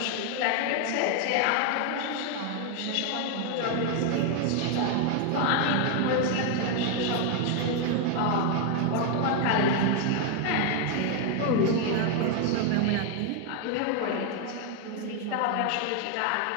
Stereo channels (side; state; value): both; different; correlation 0.01